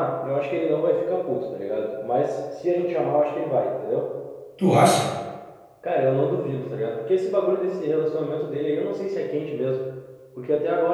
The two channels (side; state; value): both; identical; correlation 1.00